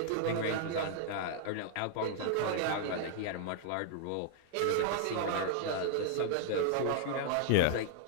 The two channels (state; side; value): different; both; correlation -0.01